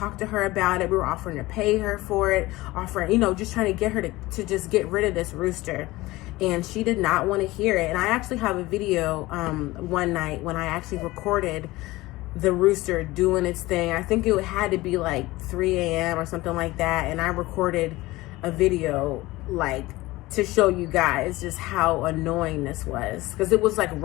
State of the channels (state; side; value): quieter; right; 19.4 dB